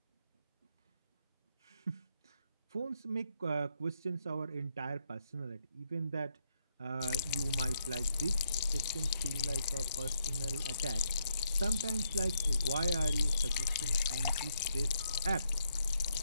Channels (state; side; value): inverted; both; correlation -0.75